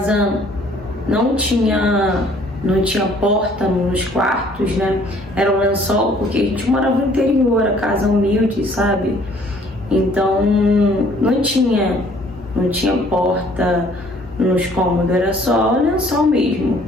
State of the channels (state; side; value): normal; both; correlation 0.58